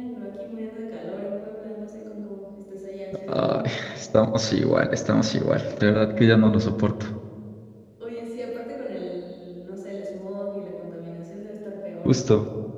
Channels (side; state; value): both; identical; correlation 1.00